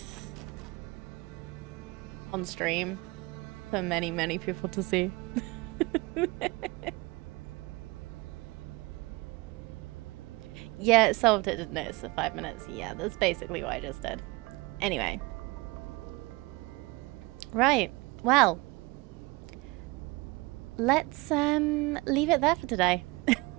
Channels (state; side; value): quieter; left; 23.7 dB